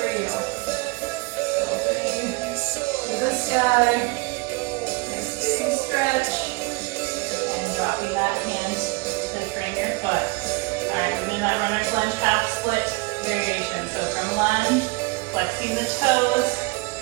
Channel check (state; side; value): quieter; left; 26.9 dB